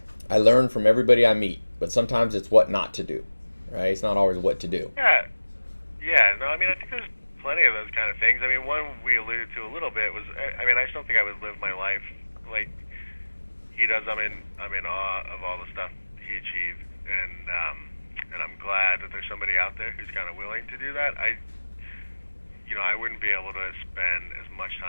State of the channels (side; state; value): both; inverted; correlation -1.00